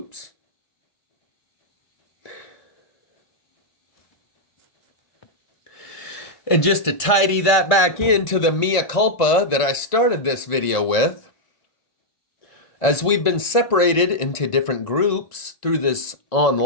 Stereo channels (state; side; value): late; right; 1.7 ms